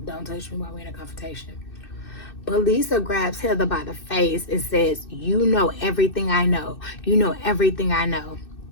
Don't touch me while we in a confrontation. But Lisa grabs Heather by the face and says, "You know everything I know. You know everything I know."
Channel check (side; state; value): right; late; 2.6 ms